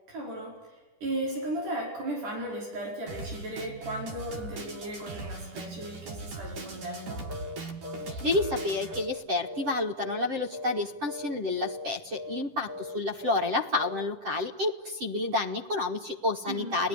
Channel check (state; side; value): late; left; 10 ms